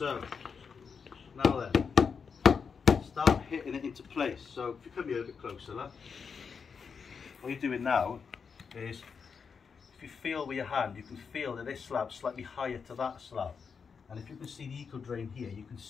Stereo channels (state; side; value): quieter; right; 5.9 dB